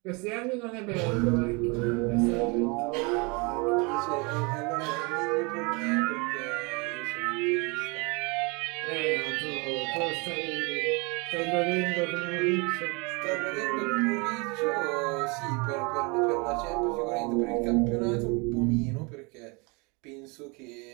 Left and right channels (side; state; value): left; quieter; 29.5 dB